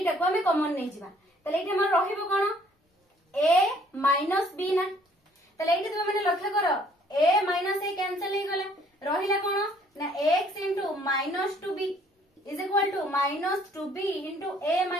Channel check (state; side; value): normal; both; correlation 0.61